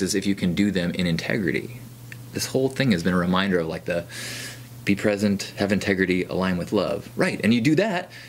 is if you can do them in integrity. This whole thing has been a reminder of like the be present, have integrity, align with love. Right, and you do that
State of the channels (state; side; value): identical; both; correlation 1.00